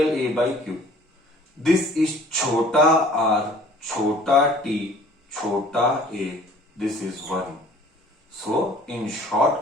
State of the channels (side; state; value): both; normal; correlation 0.52